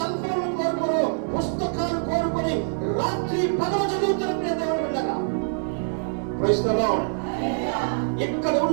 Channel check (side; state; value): left; silent; 62 dB below the other